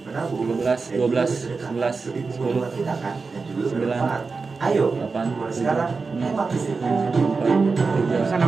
menabung 13, 12, 11, 10, kita kan dan juga 9, ayo 8, mulai sekarang hemat listrik. 4, 3, Pesan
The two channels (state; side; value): quieter; left; 4.4 dB